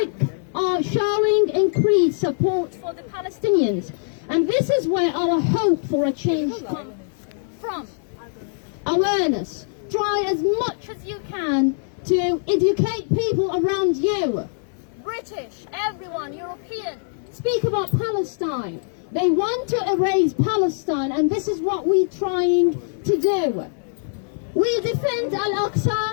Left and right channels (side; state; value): right; silent; digital silence